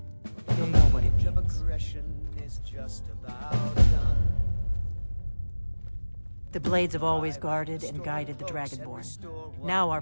You'll know what it means. The Blades have always guarded and guided the Dragonborn. Now our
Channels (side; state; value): both; inverted; correlation -1.00